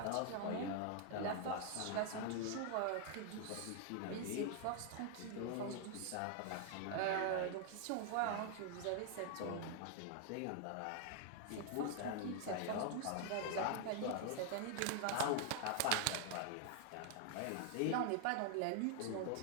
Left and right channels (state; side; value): different; both; correlation 0.00